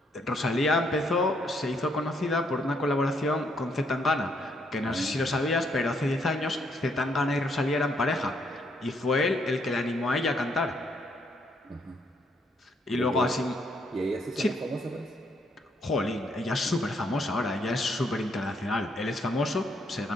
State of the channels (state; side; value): normal; both; correlation 0.72